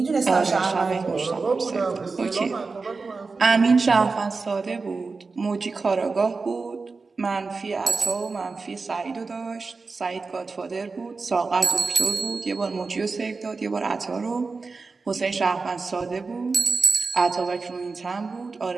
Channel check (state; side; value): quieter; left; 4.2 dB